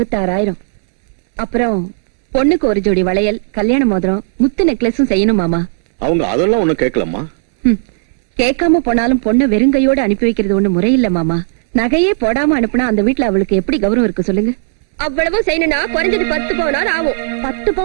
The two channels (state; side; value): silent; left; digital silence